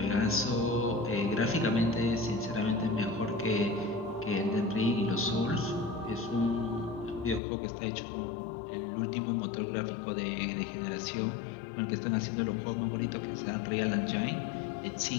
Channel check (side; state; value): right; drops out; at 7.4 s